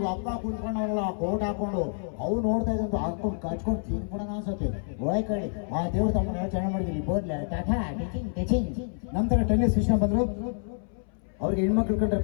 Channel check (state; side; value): silent; right; 59 dB below the other